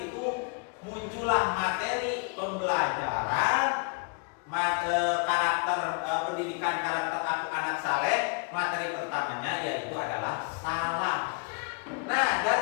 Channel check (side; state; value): right; quieter; 35.5 dB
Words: itu muncullah materi pembelajaran karakter pendidikan karakter anak saleh. Materi pertamanya yaitu adalah salam. Nah,